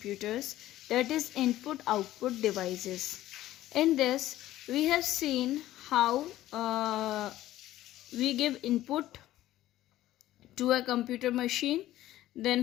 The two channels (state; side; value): quieter; right; 14.6 dB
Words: that is input output devices. In this, we have seen how we give input to a computer machine, then